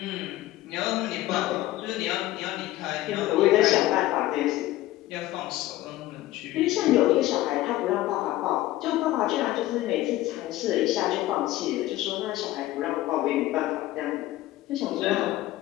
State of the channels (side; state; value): right; quieter; 15.9 dB